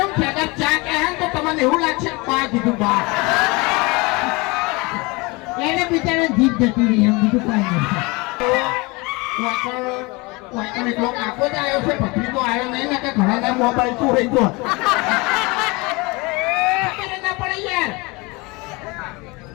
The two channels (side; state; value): right; quieter; 25.6 dB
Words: પડે ચા કહે તો તમને એવું લાગશે પા કીધું બા એને બિચારા જીભ જતી રહી એમ બીજું કોઈ નહીં એટલો કાકો જ આવ્યો છે ભત્રી તો આવ્યો નહીં ને કે ઘણા મોબાઈલ શું રહી ગયો ના પડે યાર